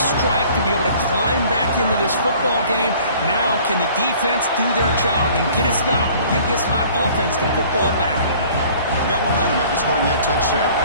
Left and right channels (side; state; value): both; inverted; correlation -0.52